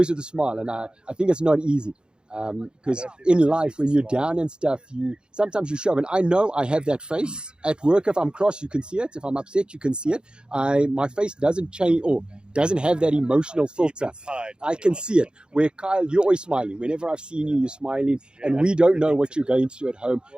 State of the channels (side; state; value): left; late; 0.050 ms